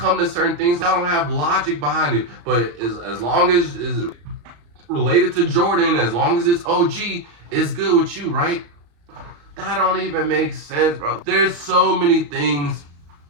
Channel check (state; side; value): late; left; 34 ms